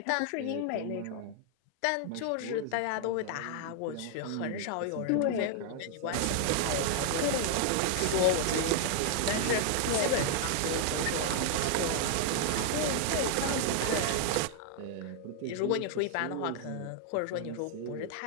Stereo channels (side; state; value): both; different; correlation 0.00